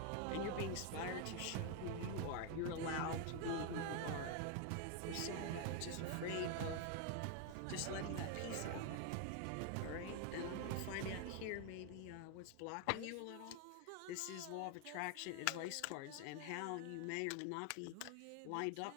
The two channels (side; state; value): both; different; correlation 0.01